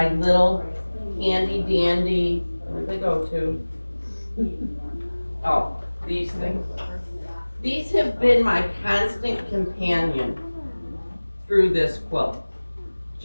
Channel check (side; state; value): both; inverted; correlation -1.00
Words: little handy dandy, where'd they go to? Oh, these things. These have been my constant companion through this quilt.